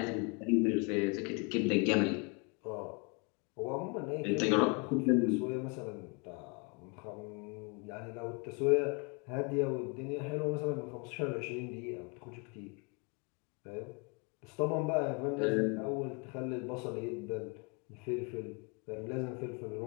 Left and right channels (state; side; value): quieter; right; 32.5 dB